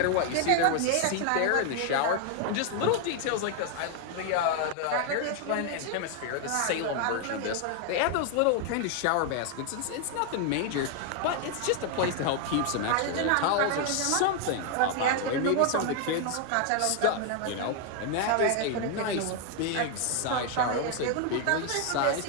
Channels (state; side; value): different; both; correlation 0.00